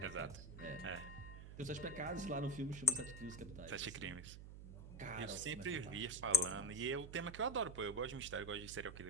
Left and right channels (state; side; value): noise; right; hum, 11 dB below the sound